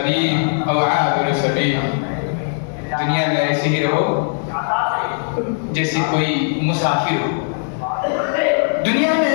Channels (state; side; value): silent; right; digital silence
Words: او عابر سبیل، دنیا میں ایسے ہی رہو جیسے کوئی مسافر ہو، دنیا میں